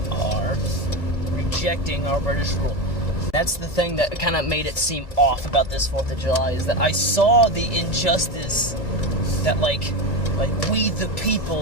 are rejecting our British rule. That's the thing that kind of made it seem off about this 4th of July, is that I saw the injustice that like we the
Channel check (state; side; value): late; right; 2.1 ms